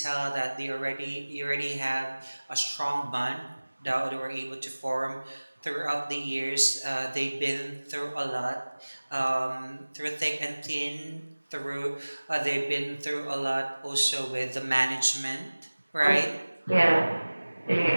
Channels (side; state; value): both; inverted; correlation -1.00